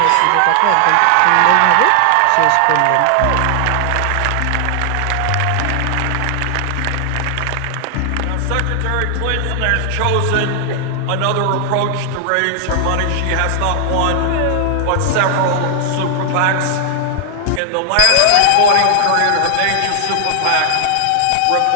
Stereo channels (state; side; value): different; both; correlation 0.00